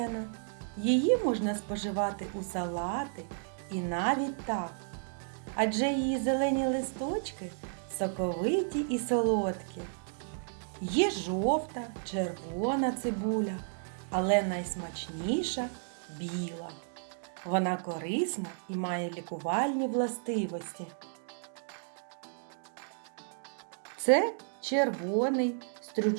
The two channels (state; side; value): silent; left; digital silence